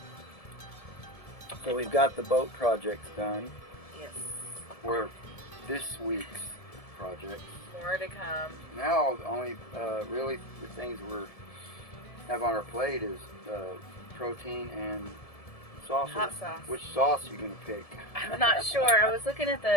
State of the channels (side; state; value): right; late; 1.7 ms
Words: So we've got the boat projects done. Yes. We're this week's projects. More to come. Now, the only really the things we have on our plate is protein and sauce. Hot sauce. Which sauce are you gonna pick? I'm not sure. I was looking at